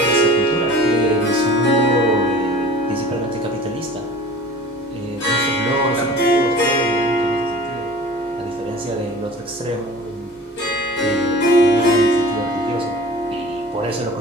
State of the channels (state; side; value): normal; both; correlation 0.42